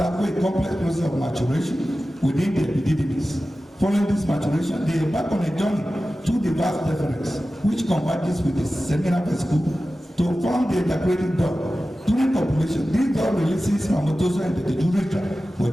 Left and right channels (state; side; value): normal; both; correlation 0.95